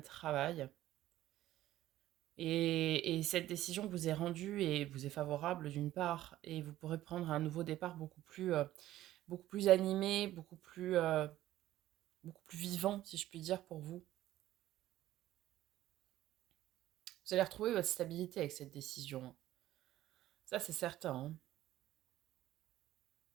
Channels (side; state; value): left; quieter; 14.3 dB